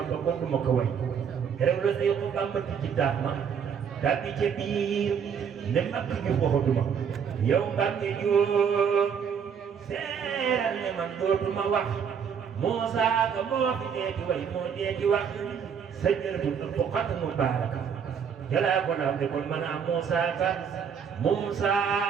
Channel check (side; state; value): left; quieter; 7.2 dB